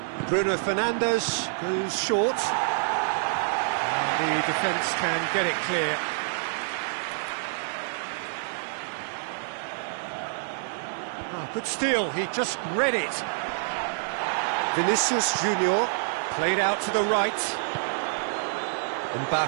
Bruno Fernandes goes short. And the defence can get it clear. Oh, good steal, he just read it. Vinicius Junior played out to the right.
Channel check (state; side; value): silent; left; digital silence